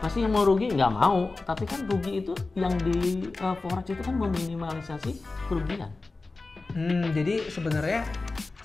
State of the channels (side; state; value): right; quieter; 3.6 dB